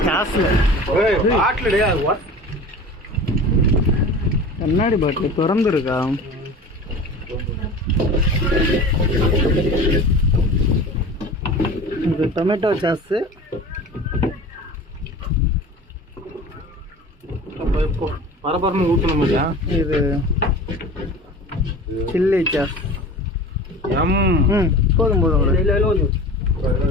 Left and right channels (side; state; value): both; normal; correlation 0.38